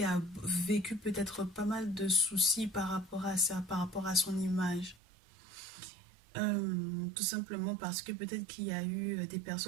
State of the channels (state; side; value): drops out; left; at 5.0 s